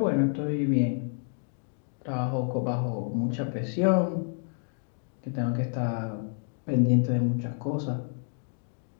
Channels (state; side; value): silent; right; 58 dB below the other